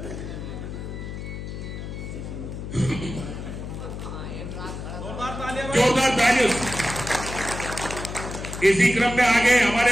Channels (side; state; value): left; noise; hum, 8 dB below the sound